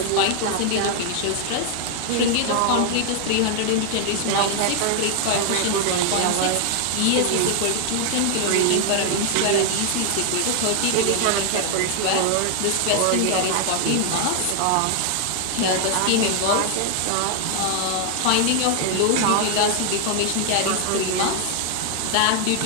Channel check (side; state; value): both; different; correlation 0.00